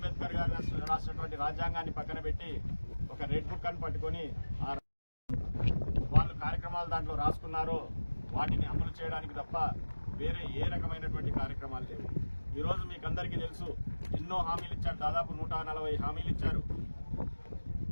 గారు రాసినటువంటి రాజ్యాంగాన్ని పక్కన పెట్టి ఒక రెడ్ బుక్ అని పట్టుకొని వాళ్ళు కార్యక్రమాలు దాంట్లో రాసుకున్నారో వాటిని అమలు చేయడానికి తప్ప వేరే ఏ రకమైనటువంటి కార్యక్రమాలు లేవు. ఈరోజు మీకు అందరికీ తెలుసు, ఎన్నో హామీలు ఇచ్చారు, దాదాపు 140 హామీలు ఇచ్చారు.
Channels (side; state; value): both; inverted; correlation -1.00